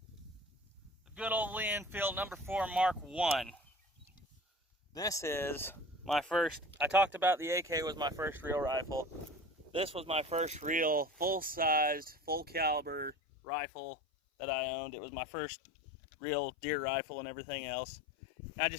The good old Lee Enfield number 4 Mark I. This is my first, I talked about the AK was my first real rifle. This was my first real full-sized, full-caliber rifle that I owned. It was my first real deer rifle and everything else. I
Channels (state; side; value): drops out; right; at 13.2 s